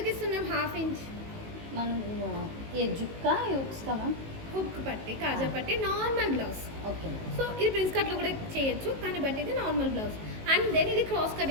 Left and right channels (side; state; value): left; late; 19 ms